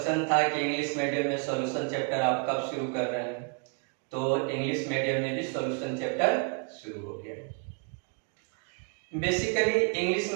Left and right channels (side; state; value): left; quieter; 37.1 dB